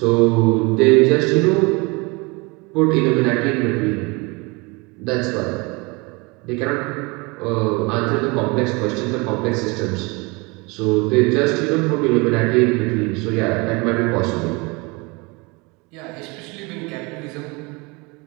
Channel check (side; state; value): left; quieter; 27.2 dB